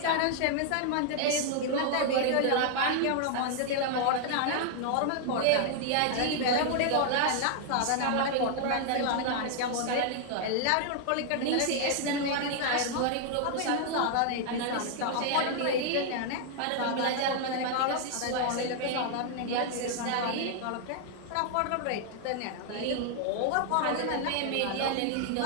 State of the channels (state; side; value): different; both; correlation 0.00